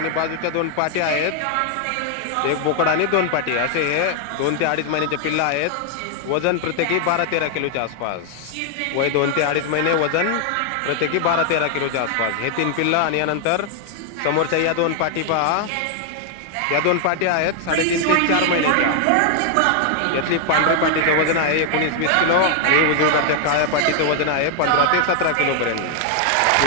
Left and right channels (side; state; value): both; different; correlation 0.00